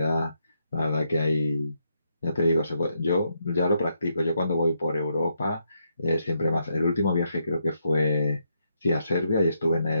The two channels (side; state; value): both; inverted; correlation -0.78